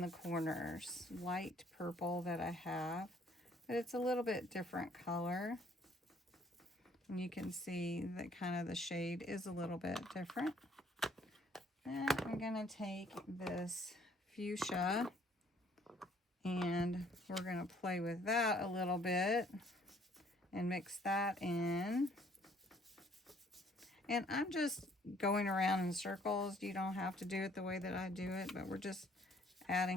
the corners, light purple that I have, but it's a little bit different color, and you can see that kind of the shade is a little bit different. Then I'm going to take this fuchsia and we're going to play with that a little bit and mix that in. And I'm just going around in circles. You don't have to do it the way that I do it, but we're just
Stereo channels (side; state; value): both; normal; correlation 0.62